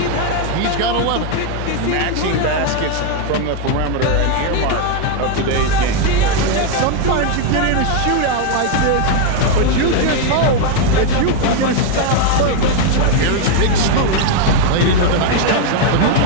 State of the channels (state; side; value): different; both; correlation 0.01